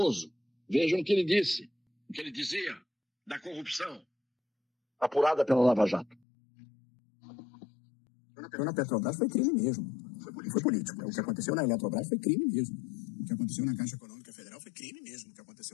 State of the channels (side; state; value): right; drops out; at 6.2 s